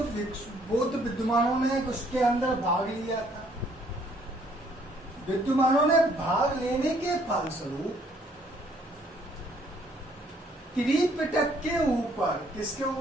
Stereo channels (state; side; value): normal; both; correlation 0.64